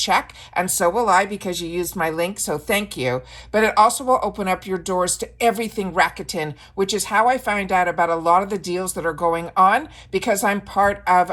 And so will I because you used my link. So thank you. But it also will open up your doors to everything Rakuten, which is how I find out about a lot of the deals that are going on because I'm part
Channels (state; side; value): identical; both; correlation 1.00